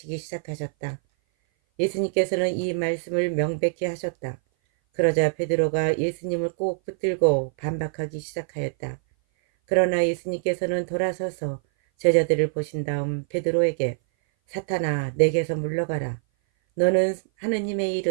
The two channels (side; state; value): left; silent; 58 dB below the other